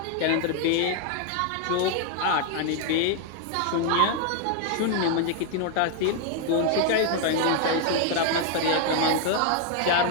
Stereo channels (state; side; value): different; both; correlation 0.01